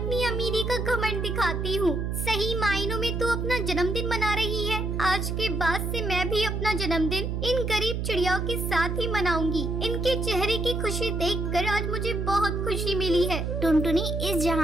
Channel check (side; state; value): right; noise; hum, 2 dB below the sound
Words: अमीरी का घमंड दिखाती हूँ। सही मायनों में तू अपना जन्मदिन मना रही है। आज के बाद से मैं भी अपना जन्मदिन इन गरीब चिड़ियाओं के साथ ही मनाऊंगी। इनके चेहरे की खुशी देखकर आज मुझे बहुत खुशी मिली है। टुनटुनी, इस